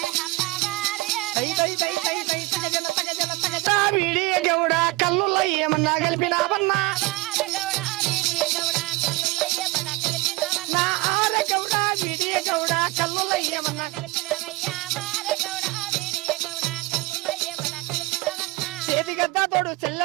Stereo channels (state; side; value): quieter; left; 22.0 dB